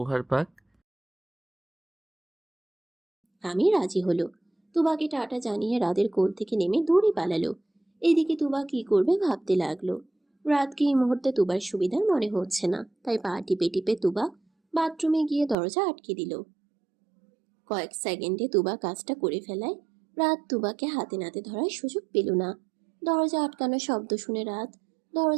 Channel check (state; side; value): drops out; left; at 15.6 s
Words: পাক? আমি রাজি হলো। তুবাকে টাটা জানিয়ে রাতের কোল থেকে নেমে দৌড়ে পালালো। এদিকে তুবা কি করবে ভাবতে লাগলো। রাতকে এই মুহূর্তে তুবার সুবিধার মনে হচ্ছে না, তাই পা টিপে টিপে তুবা বাথরুমে গিয়ে দরজা আটকে দিল। কয়েক সেকেন্ডে তুবা কাজটা করে ফেলায় রাত তুবাকে হাতে নাতে ধরার সুযোগ পেল না। দরজা আটকানো শব্দ শুনে রাত